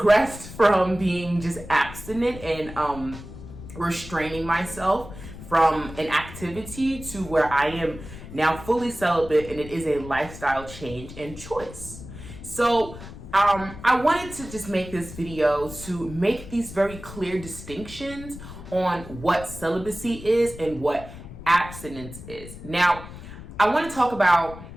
from being just abstinent and restraining myself from an activity to where I am now fully celibate, and it is a lifestyle change and choice. So I wanted to just make this video to make these very clear distinctions on what celibacy is and what abstinence is. Now, I want to talk about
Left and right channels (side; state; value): left; noise; rumble, 14 dB below the sound